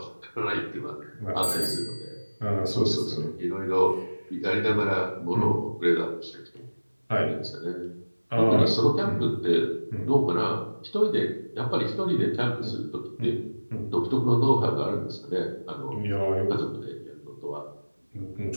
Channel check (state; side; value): inverted; both; correlation -1.00